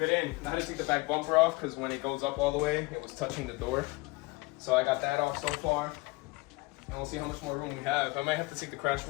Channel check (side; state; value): right; quieter; 24.2 dB